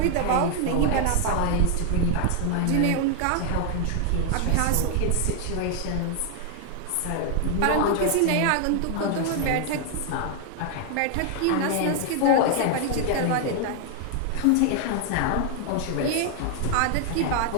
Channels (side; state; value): both; different; correlation 0.00